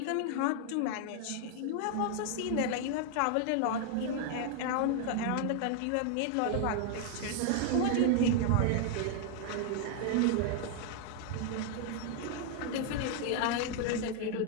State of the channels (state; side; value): different; both; correlation 0.00